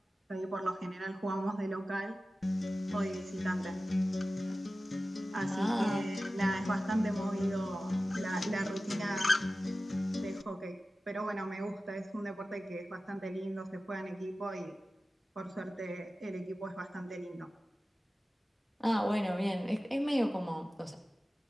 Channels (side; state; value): both; normal; correlation 0.95